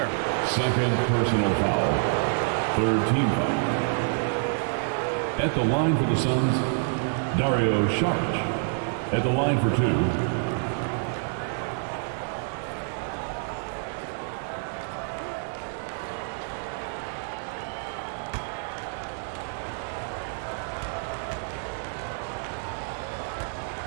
Second personal foul. Third team foul. At the line for the Suns, Dario Saric. At the line for 2.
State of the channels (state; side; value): silent; left; 60 dB below the other